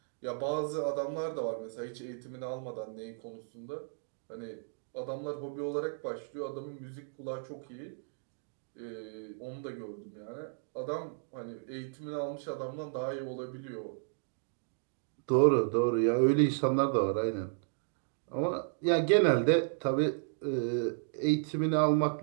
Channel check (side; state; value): left; silent; digital silence